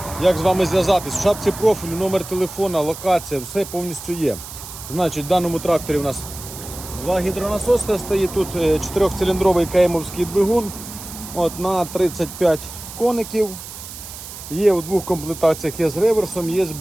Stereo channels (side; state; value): right; noise; hiss, 12 dB below the sound